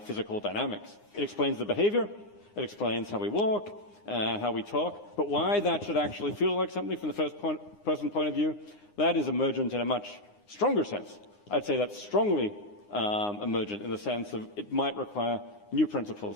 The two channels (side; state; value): right; late; 9.7 ms